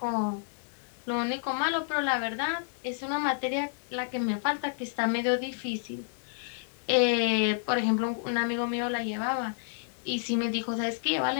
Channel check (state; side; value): silent; right; 58 dB below the other